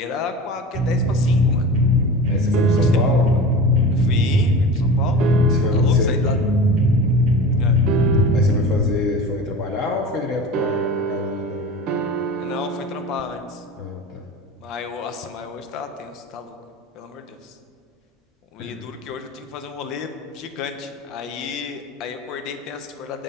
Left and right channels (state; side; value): normal; both; correlation 0.33